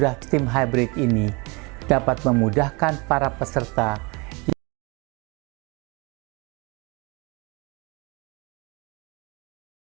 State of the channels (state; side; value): quieter; left; 28.3 dB